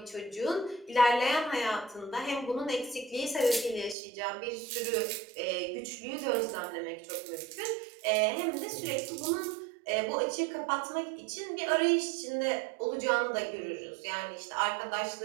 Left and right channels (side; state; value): left; drops out; at 4.0 s